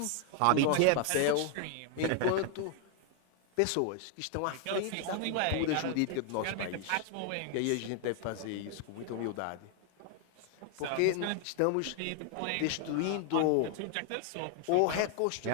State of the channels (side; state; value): both; different; correlation 0.00